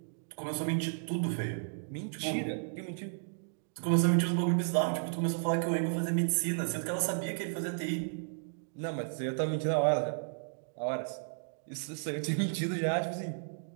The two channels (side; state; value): left; silent; digital silence